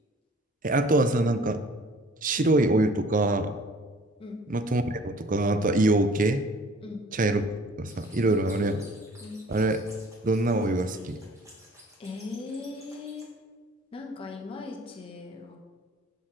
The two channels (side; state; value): both; normal; correlation 0.52